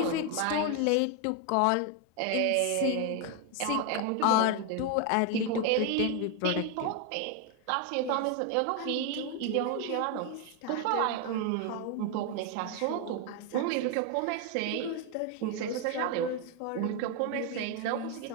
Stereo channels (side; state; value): both; different; correlation 0.01